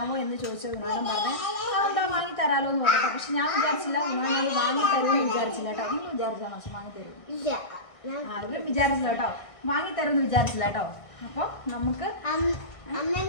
എന്ന് ചോദിച്ച വിനോദം പറഞ്ഞു എന്താ വാങ്ങി തരാമല്ലോ എന്ന് പറഞ്ഞു. പക്ഷെ ഞാൻ വിചാരിച്ചില്ല വിനോദം വാങ്ങി തരുമെന്ന് വിചാരിച്ചില്ല കേട്ടോ. നിങ്ങൾ വിചാരിച്ചാൽ പക്ഷെ വാങ്ങി തരും വിചാരിച്ചില്ല കേട്ടോ, വാങ്ങി തരുമെന്ന് വിചാരിച്ചില്ല കേട്ടോ. അപ്പൊ നമുക്ക്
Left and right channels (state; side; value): late; right; 1.6 ms